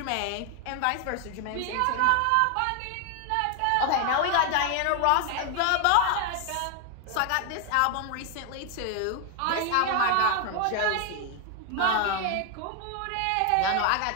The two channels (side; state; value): both; different; correlation 0.01